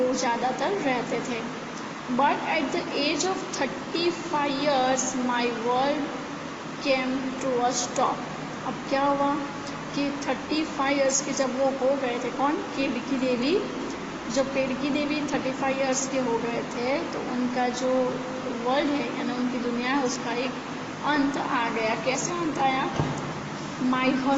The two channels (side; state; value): both; identical; correlation 1.00